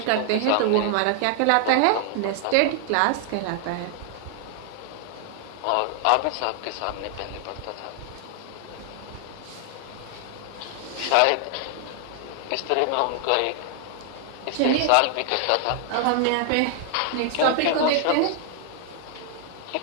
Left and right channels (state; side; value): different; both; correlation 0.00